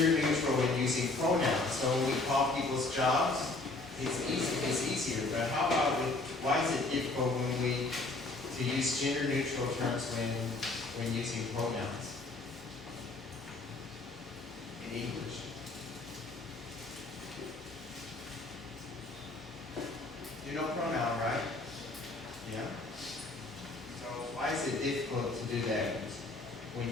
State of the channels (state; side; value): quieter; right; 3.2 dB